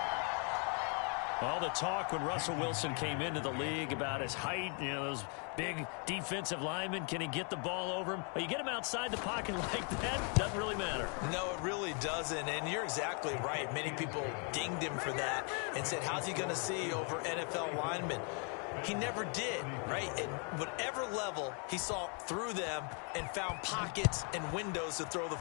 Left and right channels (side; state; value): right; quieter; 38.7 dB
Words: All the talk when Russell Wilson came into the league about his height, you know, those big defensive linemen, can he get the ball over him? You get him outside the pocket like that, doesn't really matter. No, it really doesn't, and you're exactly right. Many people dinged him for that and said, how's he going to see over NFL linemen? He never did, right? At whatever level, he saw through them and found pockets and windows to throw the